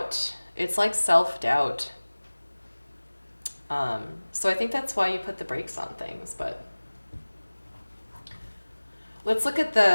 It's like self-doubt. So I think that's why you put the brakes on things, but let's look at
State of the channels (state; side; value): inverted; both; correlation -1.00